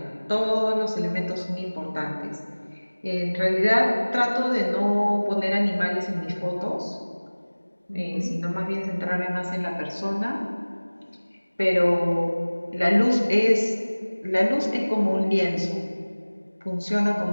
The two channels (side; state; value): both; inverted; correlation -1.00